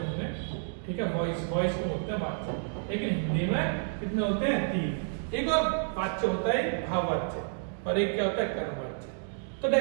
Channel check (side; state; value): left; silent; 58 dB below the other